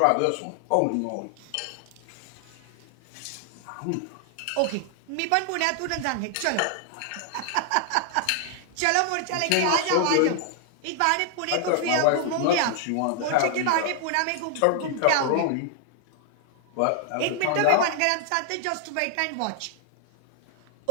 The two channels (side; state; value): both; different; correlation 0.00